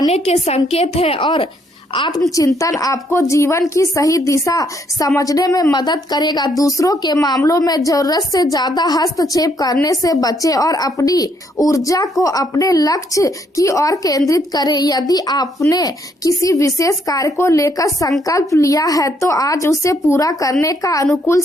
के संकेत है और आत्मचिंतन आपको जीवन की सही दिशा समझने में मदद करेगा। दूसरों के मामलों में जरूरत से ज्यादा हस्तक्षेप करने से बचें और अपनी ऊर्जा को अपने लक्ष्य की ओर केंद्रित करें। यदि आपने किसी विशेष कार्य को लेकर संकल्प लिया है तो आज उसे पूरा करने का अनुकूल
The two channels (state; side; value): normal; both; correlation 0.71